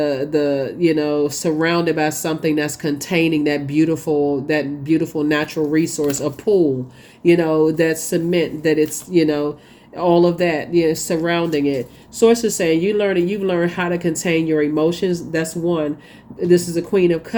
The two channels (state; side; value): identical; both; correlation 1.00